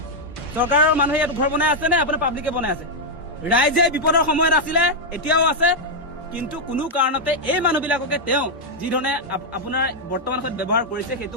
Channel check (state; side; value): normal; both; correlation -0.02